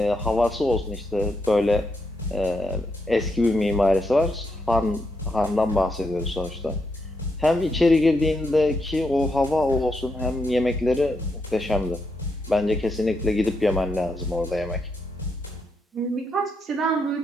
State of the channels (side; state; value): both; normal; correlation 0.81